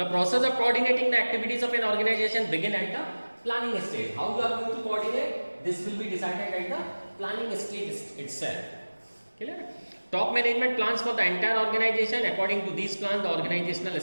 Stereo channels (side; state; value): both; inverted; correlation -1.00